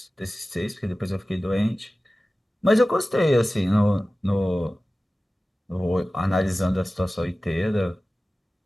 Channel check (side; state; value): both; normal; correlation 0.96